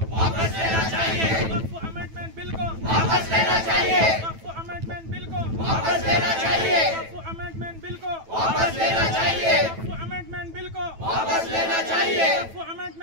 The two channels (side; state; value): left; late; 9.1 ms